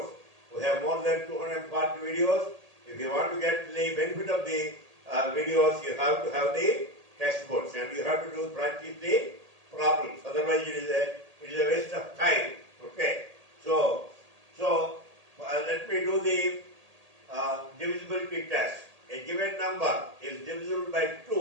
We have more than 240 videos. If you want to get the benefit of the videos, you have to have the test books and you have to practice the problems. Otherwise, it is a waste of time. Okay. So let me do the divisibility test. A given number is divisible by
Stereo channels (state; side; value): late; left; 1.8 ms